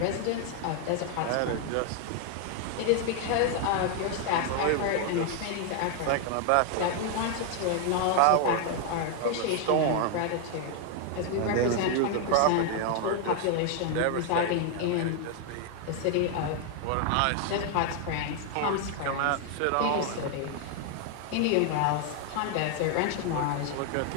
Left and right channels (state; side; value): different; both; correlation 0.00